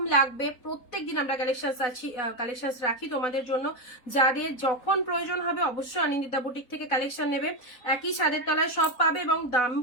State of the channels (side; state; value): right; late; 4.0 ms